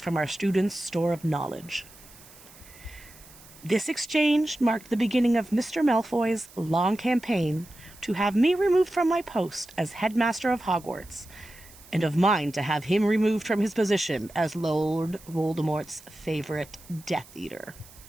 our students' store of knowledge. This exchange marked the beginning of Mr. Malfoy's long campaign to have me removed from my post as headmaster of Hogwarts, and of mine to have him removed from his position as Lord Voldemort's favorite Death Eater.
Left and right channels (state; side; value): noise; right; hiss, 22 dB below the sound